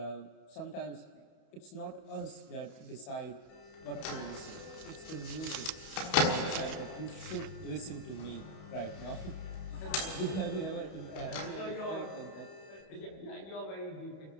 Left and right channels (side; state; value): right; late; 31 ms